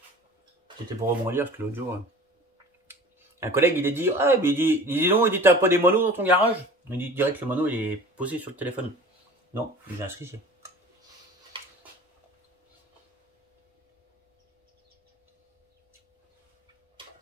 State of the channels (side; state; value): both; normal; correlation 0.42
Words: C'était pour rebondir parce que l'autre jour, un collègue il a dit ah mais il dit non, il dit t'as pas des monos dans ton garage. Il dit direct que le mono il est posé sur le téléphone. Non, j'ai un strigier.